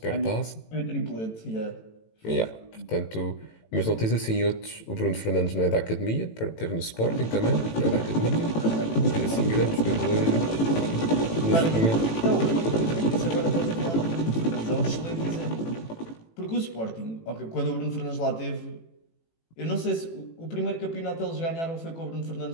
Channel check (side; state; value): right; late; 18 ms